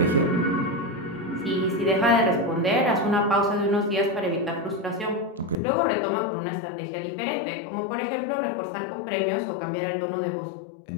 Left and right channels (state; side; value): drops out; right; at 5.6 s